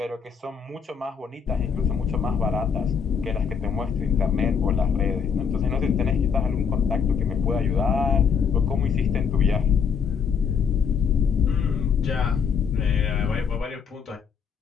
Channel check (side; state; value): right; quieter; 6.6 dB